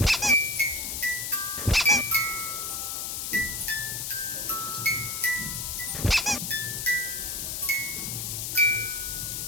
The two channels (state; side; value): noise; left; hiss, 3 dB below the sound